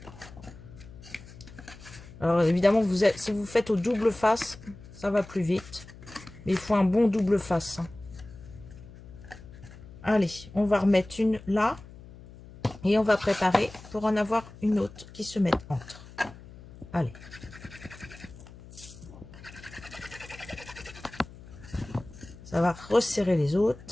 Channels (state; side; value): noise; left; hum, 18 dB below the sound